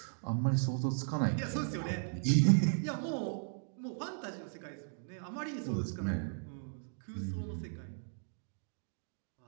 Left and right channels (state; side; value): silent; left; digital silence